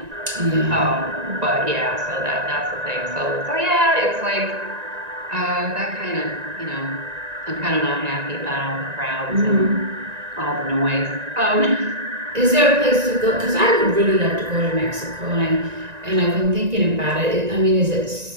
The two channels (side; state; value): left; late; 1.9 ms